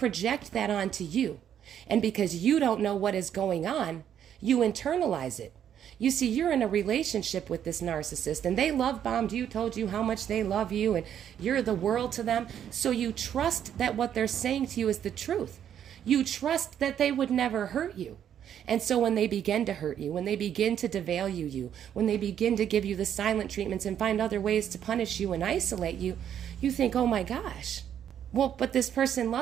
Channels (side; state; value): left; quieter; 9.5 dB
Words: that onto you. And because you don't know what is going on, you internalize it. You see, you're in a relationship with this narcissist and they love bombed you, told you how much they love you and you're the world to them. So you trust that what they're saying to you is the truth. You trust that they would never hurt you. And so when they begin to hurt you, when they begin to devalue you, when they begin to give you the silent treatments and find other ways to punish you and isolate you, you think, oh my gosh, well, but this person